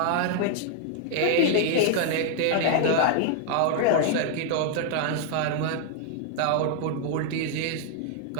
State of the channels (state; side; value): different; both; correlation 0.00